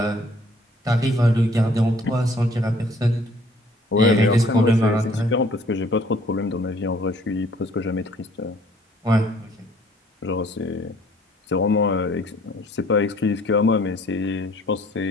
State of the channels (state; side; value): normal; both; correlation 0.58